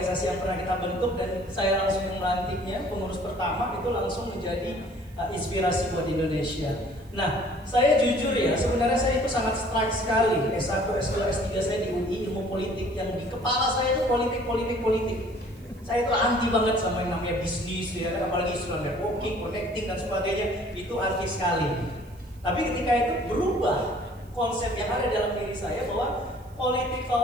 yang pernah kita bentuk dan saya langsung melantiknya, pengurus pertama itu langsung menjadi inspirasi buat Indonesia. Nah, saya jujur ya, sebenarnya saya itu sangat strike sekali S1, S2, S3 saya di UI, ilmu politik, yang di kepala saya itu politik. Saya itu anti banget sama yang namanya bisnis ya, apalagi istilah networking, connecting dan sebagainya, itu anti sekali. Tapi ketika itu berubah konsep yang ada dalam diri saya bahwa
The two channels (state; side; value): noise; right; hiss, 29 dB below the sound